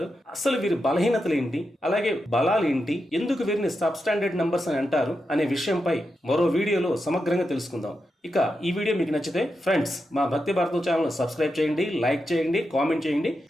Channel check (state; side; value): normal; both; correlation 0.87